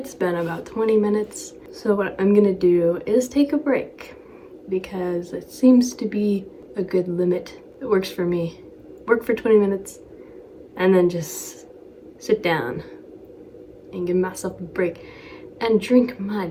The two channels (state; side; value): identical; both; correlation 1.00